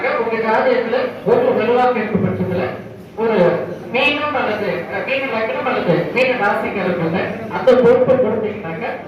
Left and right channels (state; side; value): identical; both; correlation 1.00